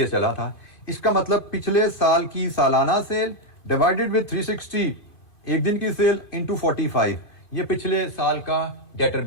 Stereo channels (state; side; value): late; right; 2.5 ms